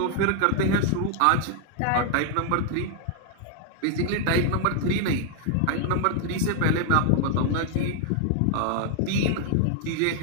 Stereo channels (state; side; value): different; both; correlation 0.00